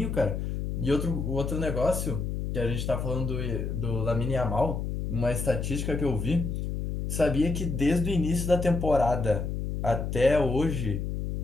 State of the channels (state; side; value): noise; left; hum, 3 dB below the sound